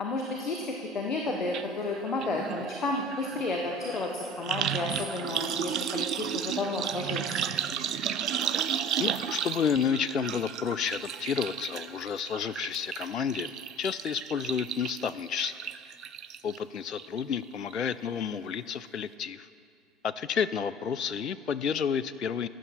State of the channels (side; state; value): both; normal; correlation 0.44